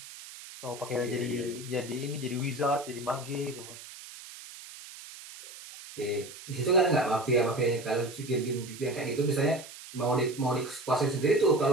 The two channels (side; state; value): right; noise; hiss, 15 dB below the sound